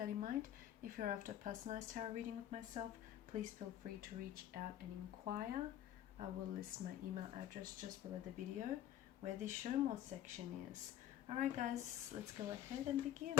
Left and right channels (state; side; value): quieter; right; 11.8 dB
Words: in mind. If you're after a personalized tarot reading with myself, please feel free to reach out and inquire. I will list my email address just below the video where the show more section is. Alright guys, let's go ahead and begin.